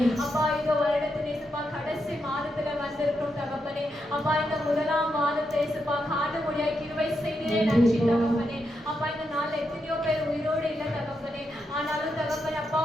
அப்பா இந்த வருடத்தின் இயேசுப்பா கடைசி மாதத்துல வந்திருக்கிறோம் தகப்பனே. அப்பா இந்த முதலாம் மாதத்தை இயேசுப்பா காண முடியாய் கிருபை செய்தீரே நன்றி தகப்பனே. அப்பா இந்த நாள்ல எத்தனையோ பேர் உயிரோடு இல்லை தகப்பனே. ஆனாலும் தகப்பனே அப்பா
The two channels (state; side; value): normal; both; correlation 0.83